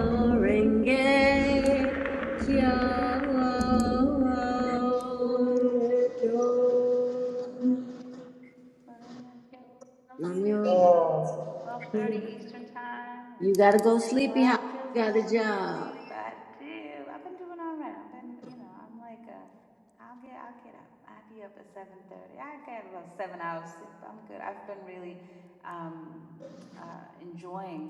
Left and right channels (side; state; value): both; identical; correlation 1.00